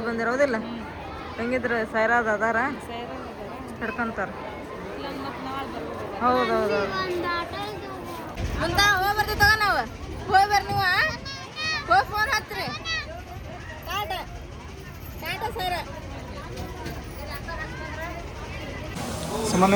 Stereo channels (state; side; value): identical; both; correlation 1.00